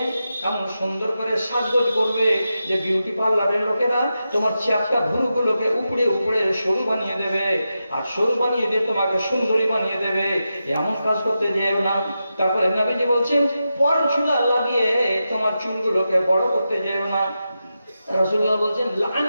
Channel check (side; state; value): both; inverted; correlation -0.89